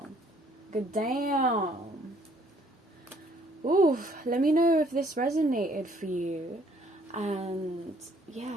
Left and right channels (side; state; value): both; normal; correlation 0.63